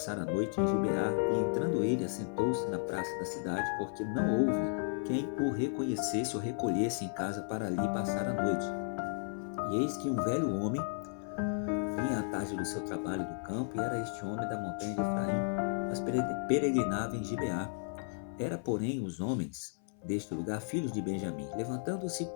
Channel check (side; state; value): right; silent; 55 dB below the other